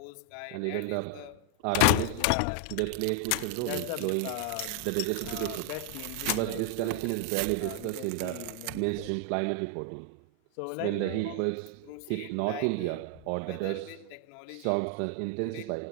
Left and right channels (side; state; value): both; different; correlation 0.00